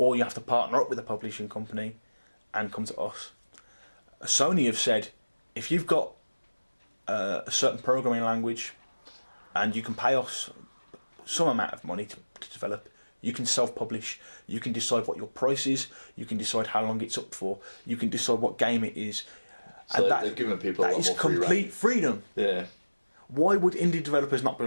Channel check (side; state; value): both; inverted; correlation -1.00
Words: you have to partner up with a publishing company and come to us. Sony have said if you've got a certain programming language and you can pay us some amount of money to develop, you can self-publish, you can decide what your price is, you can decide how long it's up for, you can decide what game it is, So and they're giving people a that lot is more free complete rein. freedom. Yeah. Why would indie developers not be